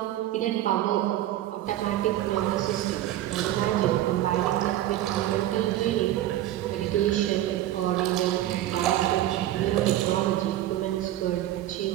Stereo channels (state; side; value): quieter; left; 13.7 dB